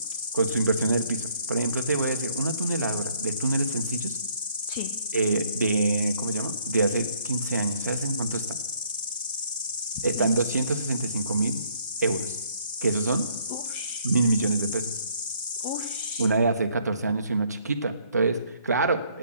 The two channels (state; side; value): inverted; both; correlation -0.66